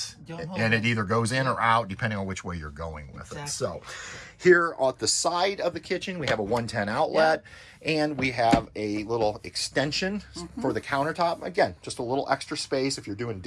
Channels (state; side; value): identical; both; correlation 1.00